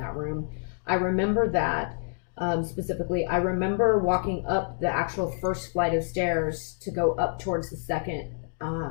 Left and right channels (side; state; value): right; silent; digital silence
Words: room. I remember that specifically. I remember walking up the actual first flight of stairs to go up towards the second